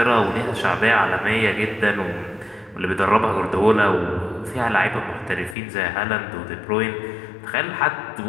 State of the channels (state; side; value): drops out; right; at 5.6 s